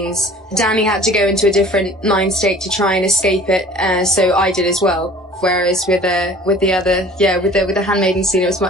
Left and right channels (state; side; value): normal; both; correlation 0.47